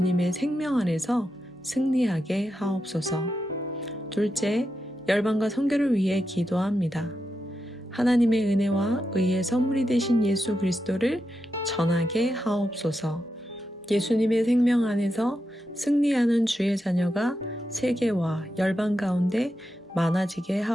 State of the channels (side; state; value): both; normal; correlation 0.87